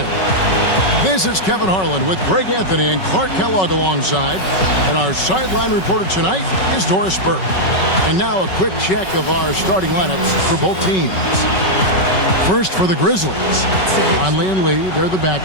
This is Kevin Harlan with Greg Anthony and Clark Kellogg alongside. And our sideline reporter tonight is Doris Burke. And now a quick check of our starting lineups for both teams. First for the Grizzlies. Conley and Lee, they're the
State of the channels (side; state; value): right; late; 5.3 ms